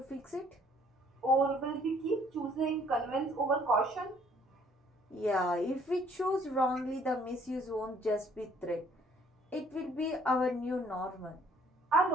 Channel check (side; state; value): both; normal; correlation 0.61